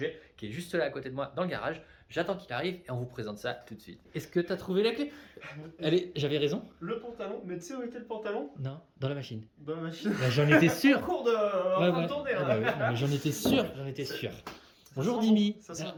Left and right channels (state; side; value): identical; both; correlation 1.00